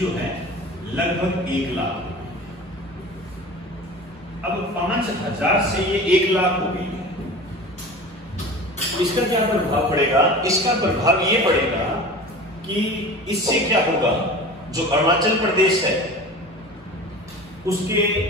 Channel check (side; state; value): both; normal; correlation 0.36